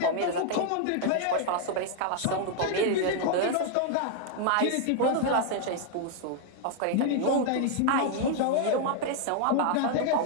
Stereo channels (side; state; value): both; different; correlation 0.00